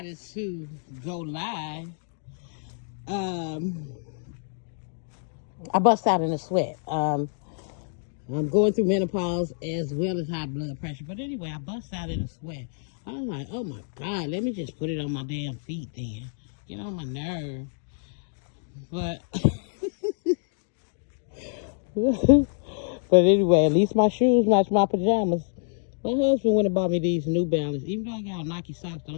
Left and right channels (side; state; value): right; silent; 60 dB below the other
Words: to go live, um, I bust out in a sweat. I'm going through menopause as well as high blood pressure. But anyway, I bust out in a sweat. I was like, oh my God, let me just put it on my damn feet then. Get on my nerve. But but anyway, at least my shoes match my pajamas. My husband went and bought me these New Balance. Even though I got Nike socks,